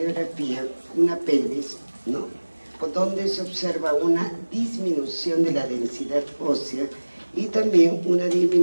una pelvis, donde se observa una disminución de la densidad ósea y también una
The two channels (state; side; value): inverted; both; correlation -1.00